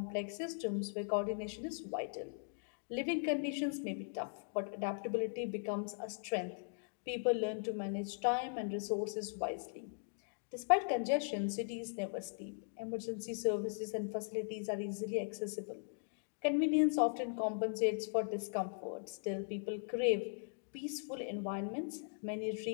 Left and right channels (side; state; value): right; silent; digital silence